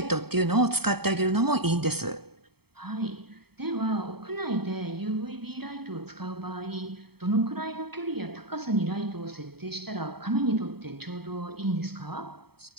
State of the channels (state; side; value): late; left; 0.96 ms